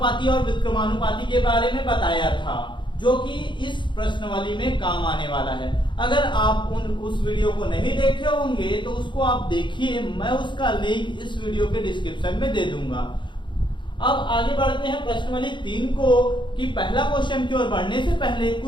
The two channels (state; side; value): late; right; 0.23 ms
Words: और विक्रमानुपाती के बारे में बताया था, जो कि इस प्रश्नावली में काम आने वाला है। अगर आप उस वीडियो को नहीं देखे होंगे तो उसको आप देखिए, मैं उसका लिंक इस वीडियो के डिस्क्रिप्शन में दे दूंगा। अब आगे बढ़ते हैं प्रश्नावली 3 को कि पहला क्वेश्चन की ओर बढ़ने से पहले